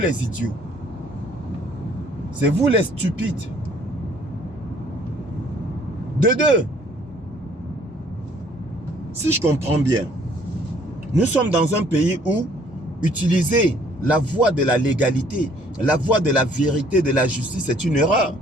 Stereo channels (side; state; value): both; normal; correlation 0.60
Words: idiots. C'est vous les stupides. De deux, si je comprends bien, nous sommes dans un pays où utiliser la voie de la légalité, la voie de la vérité, de la justice, c'est une erreur.